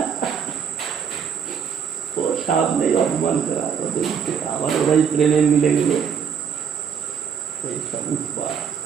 ও সামনেই অপমান করা, আমার ওরাই প্রেমে মিলে গেল, এই সব উৎপাদ।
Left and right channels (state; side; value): quieter; left; 7.2 dB